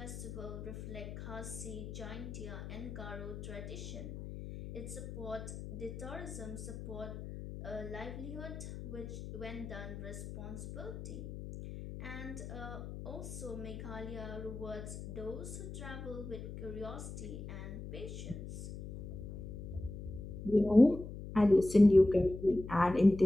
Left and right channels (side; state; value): left; noise; hum, 9 dB below the sound